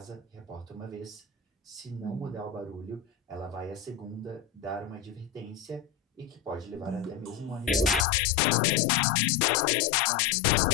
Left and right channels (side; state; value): right; drops out; at 8.1 s